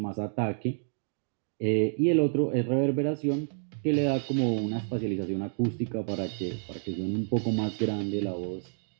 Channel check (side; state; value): left; silent; digital silence